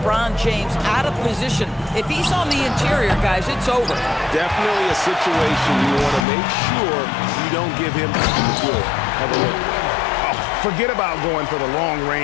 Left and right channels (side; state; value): right; drops out; at 6.2 s